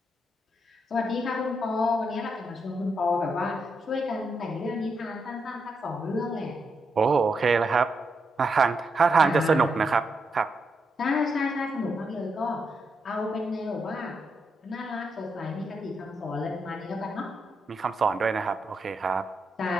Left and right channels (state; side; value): normal; both; correlation 0.82